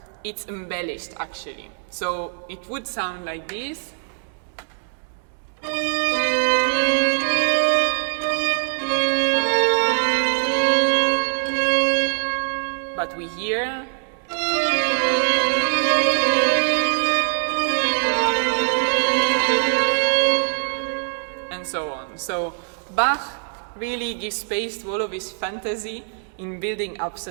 it's embellished actually. So it would sound like this. But we hear and so on. So Bach really gives space to all of his fantasy in building up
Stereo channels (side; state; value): left; silent; 64 dB below the other